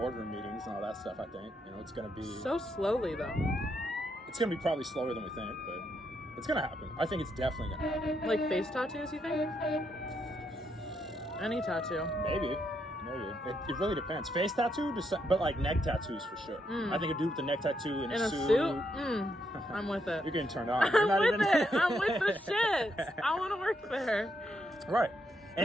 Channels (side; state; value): both; normal; correlation 0.78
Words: meetings and all that stuff. I think it's gonna be So slowly though. It's gonna be probably slower than we think, but it's gonna happen. I think it's definitely gonna happen. Like face tattoos, you think? Any tattoo. Maybe. It really depends. Face tattoo, but like neck tattoos for sure. I think a dude with a neck tattoo in a suit. suit? I'm with it. You're getting turned on. I'm with it. I'm with the shit. I want to work there. Right.